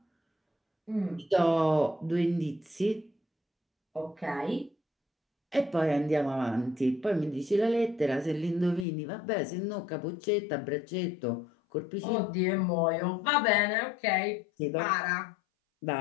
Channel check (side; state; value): right; drops out; at 8.8 s